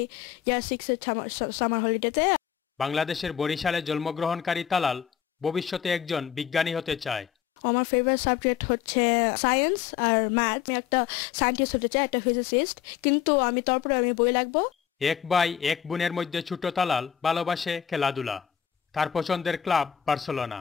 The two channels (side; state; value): right; quieter; 9.5 dB